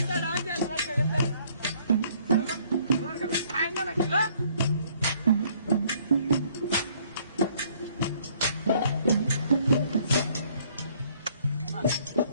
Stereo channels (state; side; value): inverted; both; correlation -0.62